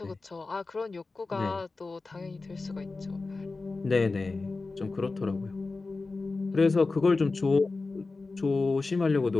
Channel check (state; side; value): quieter; right; 3.7 dB